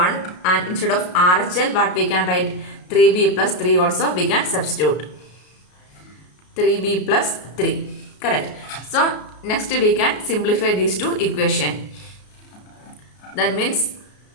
and instead of RHL, what we can write? 3b plus 3 also we can substitute. 3b plus 3. Correct. So next we can simplify these two equations. That means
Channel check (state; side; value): late; right; 33 ms